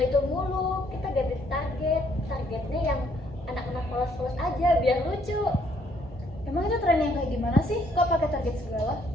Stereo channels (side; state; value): both; normal; correlation 0.67